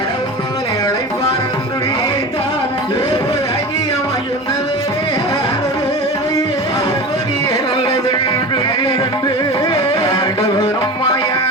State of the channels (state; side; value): normal; both; correlation 0.31